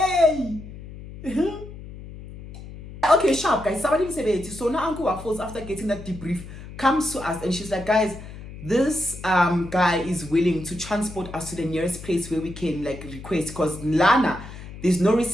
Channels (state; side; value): noise; left; hum, 14 dB below the sound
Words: Okay, sharp, guys. Somebody said it. So now Uncle Waffles, after getting that debrief, comes to us and she's like, guys, this guy is willing to transport us to the nearest place where we can like request because Lana, there's no